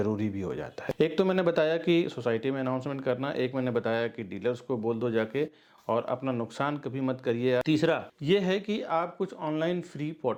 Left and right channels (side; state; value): both; identical; correlation 1.00